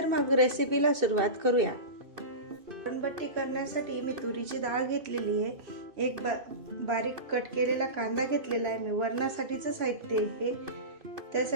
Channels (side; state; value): left; late; 2.6 ms